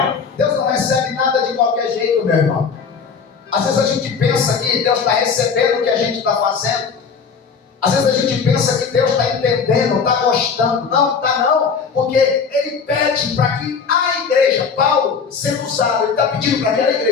Deus não recebe nada de qualquer jeito, meu irmão. Às vezes a gente pensa que Deus está recebendo o que a gente está fazendo. Às vezes a gente pensa que Deus está entendendo, está gostando. Não, está não. Porque Ele pede para que a igreja, Paulo, sendo usado, Ele está pedindo para que aquela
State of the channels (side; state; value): right; quieter; 5.8 dB